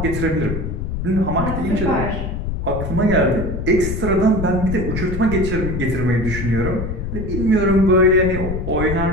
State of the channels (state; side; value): noise; left; rumble, 4 dB below the sound